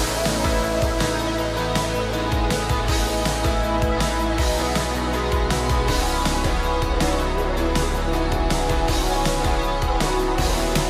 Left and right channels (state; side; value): identical; both; correlation 1.00